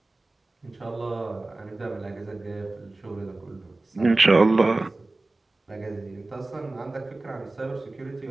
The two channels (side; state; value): left; quieter; 3.0 dB